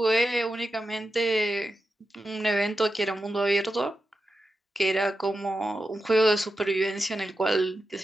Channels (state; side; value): normal; both; correlation 0.90